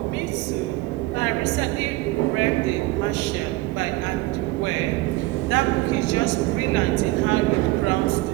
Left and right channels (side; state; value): left; quieter; 19.8 dB